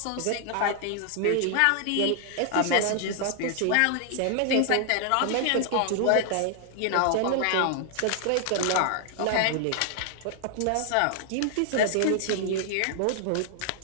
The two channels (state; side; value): different; both; correlation 0.00